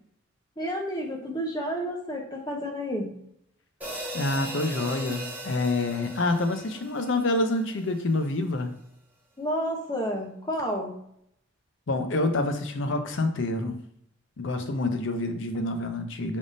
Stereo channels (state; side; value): normal; both; correlation 0.33